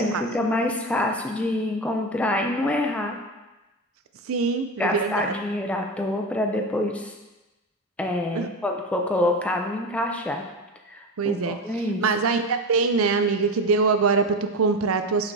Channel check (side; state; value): both; normal; correlation 0.23